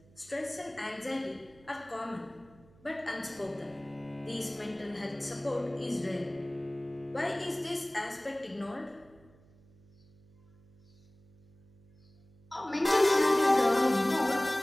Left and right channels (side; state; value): right; noise; hum, 28 dB below the sound